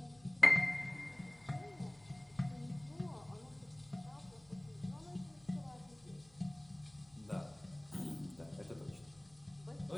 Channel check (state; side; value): noise; left; hum, 28 dB below the sound